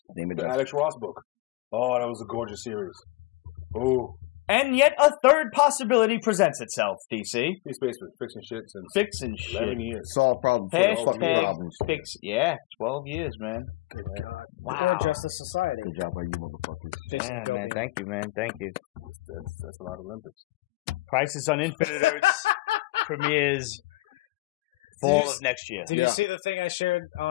Name it the Alex Ross book. Oh, that was a gorgeous series. Ooh. And yet a third possibility presents itself, DC. He's basically fixing shit since fixing 11 years. Solve problems. Fix. Yeah, 12 years, man. Good God. Wow. Good Justice Society. Good job, you motherfuckers. Yeah, man. Thank you, man. Thank you. That's a lot of Olympics. Crisis on Infinite Earths premieres fall of next year. Did you see the thing I shared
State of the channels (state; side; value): quieter; right; 20.8 dB